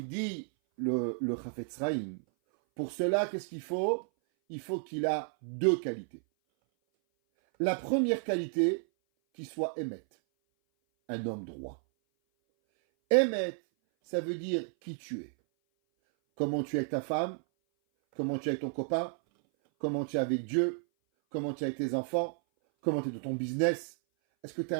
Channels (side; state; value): left; silent; 56 dB below the other